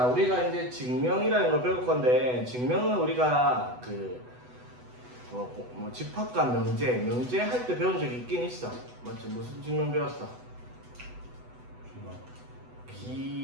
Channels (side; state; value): left; late; 8.1 ms